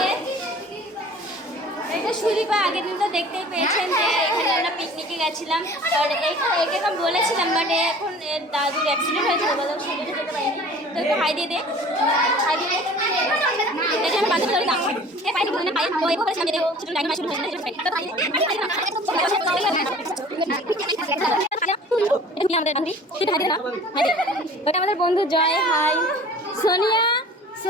এটা সুদীপা। আগের দিন তো দেখতেই পেয়েছেন যে এখানে আমরা পিকনিকে গেছিলাম, আর এখানে বলেছিলাম, বাট এখন দাদুর অ্যাক্সিডেন্ট হয়েছিল বলে সেটা যেতে পারিনি। তো একটু হাই দিয়ে দে, হাই দিয়ে দে। দেখে আমি বান্ধব ধরে দাম এ পাইনি বলে পাই তো এভাবে সামনে দেবো কিছু টাইম শুরু হয়ে যাবে। ওটা আমাদের বন্ধু জয়। হাই সোনিয়া,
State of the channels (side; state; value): both; normal; correlation 0.46